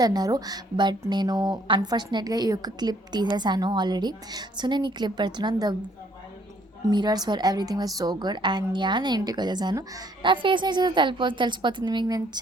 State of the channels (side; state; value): both; normal; correlation 0.64